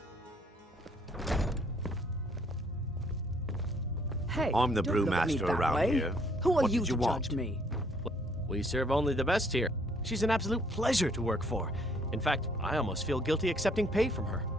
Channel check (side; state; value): both; normal; correlation 0.64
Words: Hey, I'm the don't look at me brewmaster that around way. here. Who are What you did to you want? judge me? We serve only the best here. She's an absolute pleasure to work for. In fact, I almost feel guilty accepting pay from her.